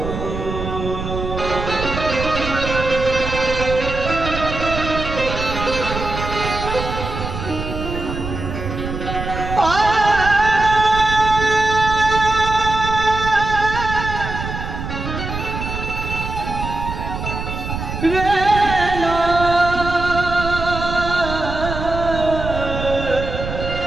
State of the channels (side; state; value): right; noise; rumble, 6 dB below the sound